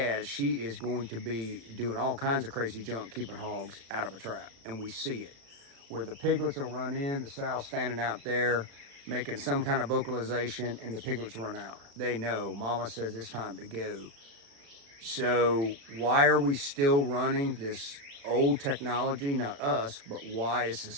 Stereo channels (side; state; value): left; late; 36 ms